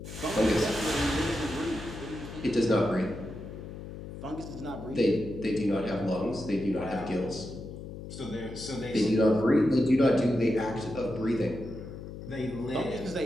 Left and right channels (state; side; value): noise; left; hum, 11 dB below the sound